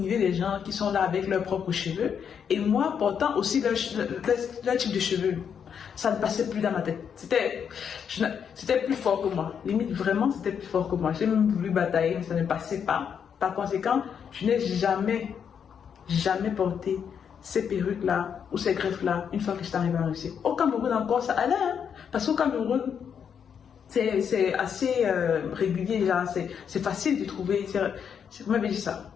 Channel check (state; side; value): quieter; right; 7.5 dB